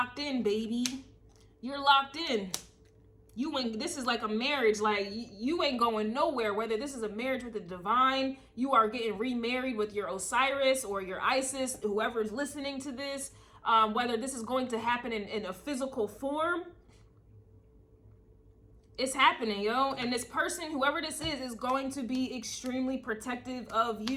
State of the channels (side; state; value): both; identical; correlation 1.00